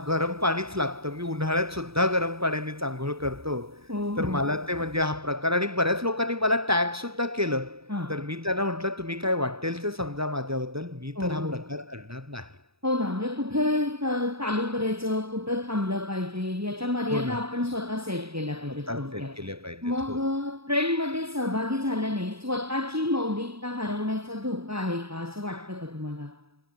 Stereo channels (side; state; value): left; late; 0.77 ms